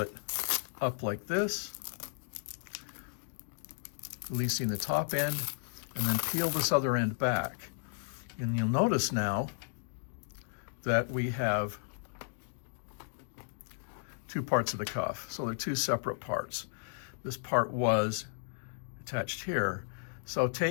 up like this, releasing the top end, and then peel this other end back. And you'll notice now that we have two parts of the cuff. So they're two separate parts. This part was attached here. So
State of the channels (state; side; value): silent; right; digital silence